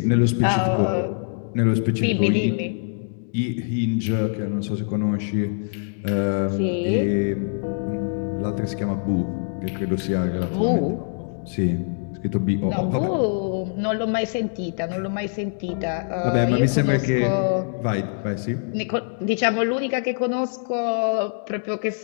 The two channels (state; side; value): silent; right; digital silence